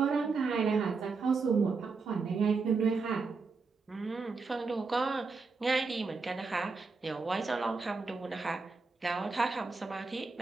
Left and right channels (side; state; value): left; quieter; 4.4 dB